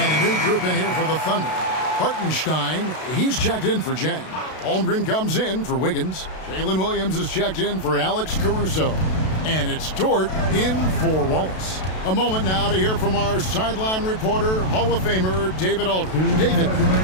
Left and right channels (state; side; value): late; right; 32 ms